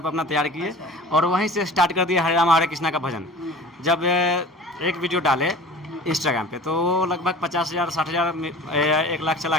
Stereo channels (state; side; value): normal; both; correlation 0.40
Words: अपना तैयार किए और वहीं से स्टार्ट कर दिए हरे राम हरे कृष्णा का भजन। जब एक वीडियो डाले इंस्टाग्राम पे तो लगभग 50,000 60,000 1 लाख चला